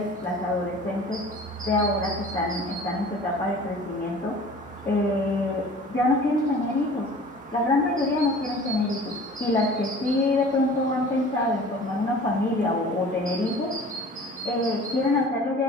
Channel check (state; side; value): normal; both; correlation 0.44